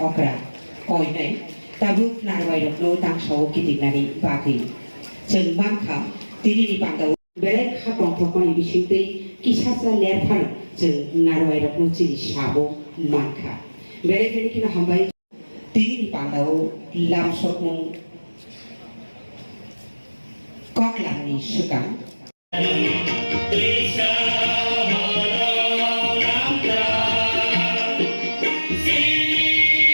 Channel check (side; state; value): both; inverted; correlation -1.00